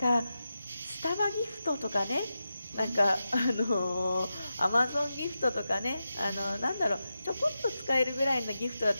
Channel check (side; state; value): both; inverted; correlation -0.91